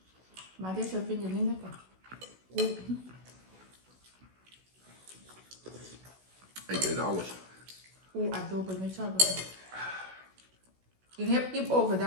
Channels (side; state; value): left; late; 16 ms